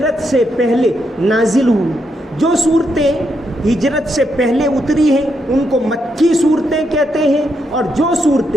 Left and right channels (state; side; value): normal; both; correlation 0.80